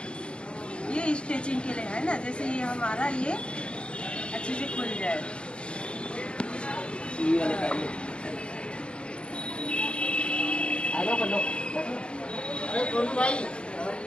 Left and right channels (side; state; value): right; late; 0.056 ms